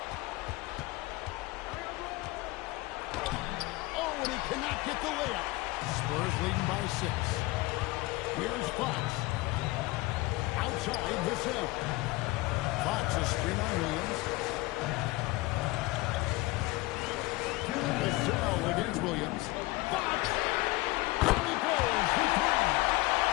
Oh, and he cannot get the layup. Spurs leading by 6. Here's Fox. Outside Vassell. Fox a screen on Williams. Vassell against Williams. Fox! And he goes for 3.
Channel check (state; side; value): quieter; right; 20.7 dB